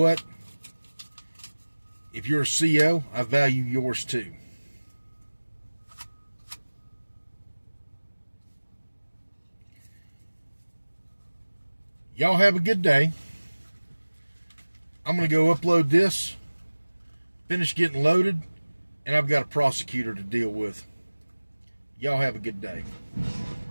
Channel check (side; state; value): both; inverted; correlation -1.00